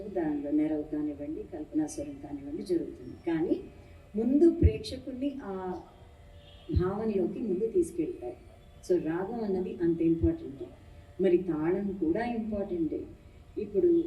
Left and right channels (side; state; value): both; identical; correlation 1.00